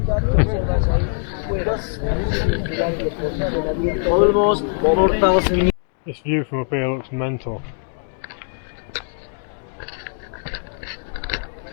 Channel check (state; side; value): silent; right; 64 dB below the other